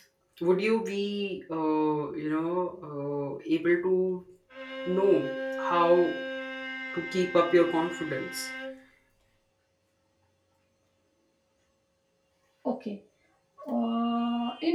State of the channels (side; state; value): both; identical; correlation 1.00